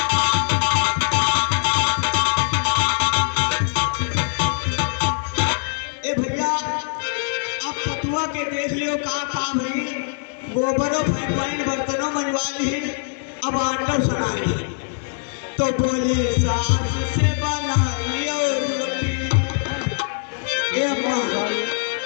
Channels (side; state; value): right; silent; 64 dB below the other